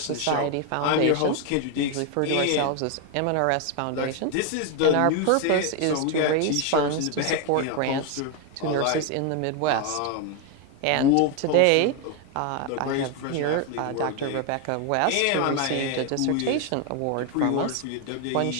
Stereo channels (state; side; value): different; both; correlation 0.01